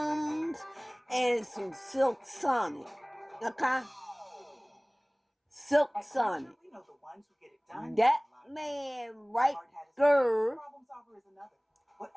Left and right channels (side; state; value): both; identical; correlation 1.00